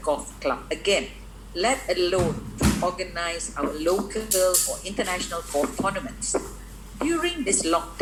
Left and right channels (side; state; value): both; identical; correlation 1.00